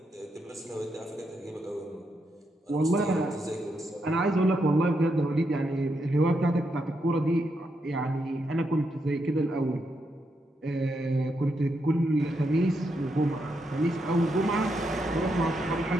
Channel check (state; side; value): normal; both; correlation 0.81